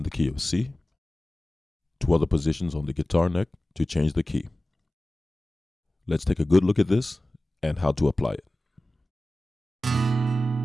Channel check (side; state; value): both; normal; correlation 0.96